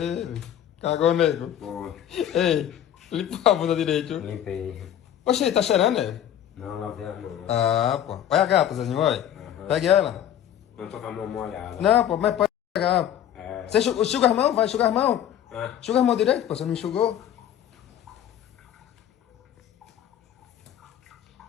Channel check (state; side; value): quieter; right; 10.5 dB